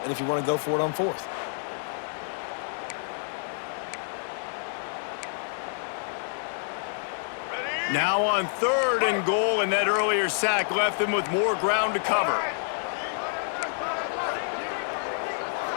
and if you want to go for it on 4th. Now on 3rd and goal, and that earlier sack left them with more ground to cover.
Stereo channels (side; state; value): right; silent; digital silence